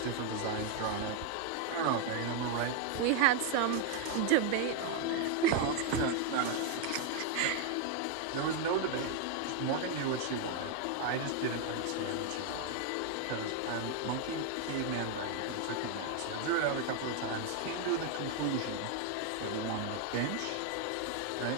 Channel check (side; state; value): both; different; correlation 0.00